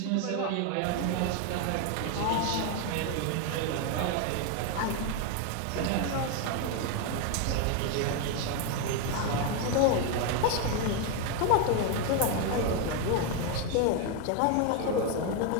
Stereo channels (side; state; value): both; different; correlation 0.01